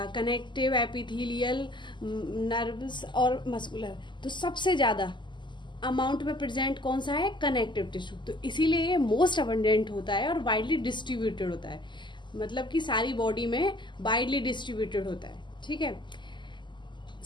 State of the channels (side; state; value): right; late; 0.22 ms